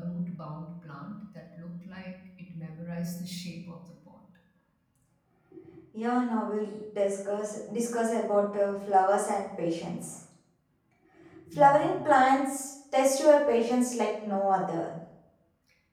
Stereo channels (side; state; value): both; identical; correlation 1.00